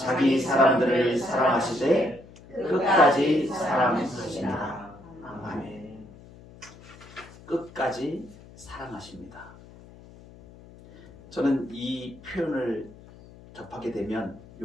사람들을 사랑하시되 끝까지 사랑하십니다. 아멘. 끝까지 사랑하십니다. 저는 이 표현을 접하게 되면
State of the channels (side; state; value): left; noise; hum, 21 dB below the sound